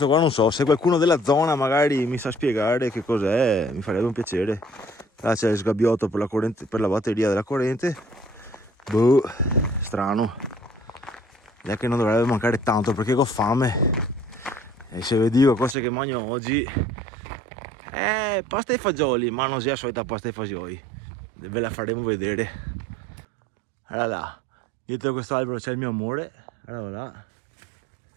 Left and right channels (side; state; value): left; drops out; at 15.8 s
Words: qua non so, se qualcuno della zona magari mi sa spiegare che cos'è, mi farebbe un piacere. Là c'è il sgabbiotto per la corrente, per la batteria della corrente. Boh, strano. È che non dovrebbe mancare tanto perché ho fame. E se vi dico cose che mangio oggi, pasta e fagioli, ma non sia la solita pasta e fagioli. Ve la faremo vedere. Allora là, dietro questo albero c'è il mio amore. Allora là.